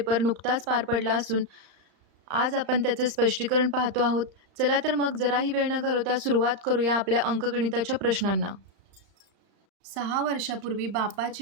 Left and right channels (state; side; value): late; left; 35 ms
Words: नुकताच पार पडला असून आज आपण त्याचं स्पष्टीकरण पाहतो आहोत. चला तर मग जराही वेळ न घालवता सुरुवात करूया आपल्या अंकगणिताच्या प्रश्नांना. 6 वर्षापूर्वी